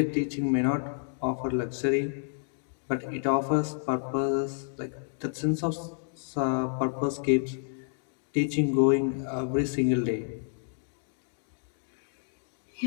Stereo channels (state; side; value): silent; right; digital silence